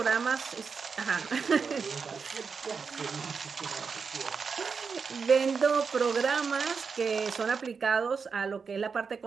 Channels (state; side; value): quieter; left; 5.5 dB